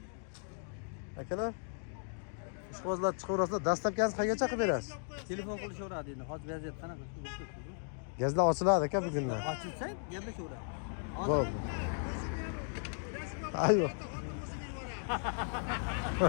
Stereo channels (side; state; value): right; silent; 54 dB below the other